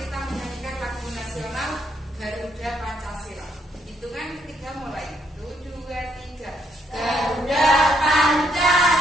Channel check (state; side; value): normal; both; correlation 0.73